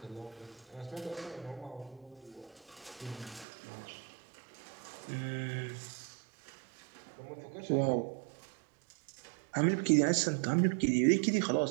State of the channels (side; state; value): left; drops out; at 3.5 s